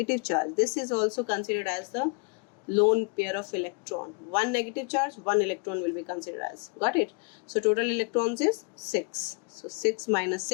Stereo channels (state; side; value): quieter; right; 36.1 dB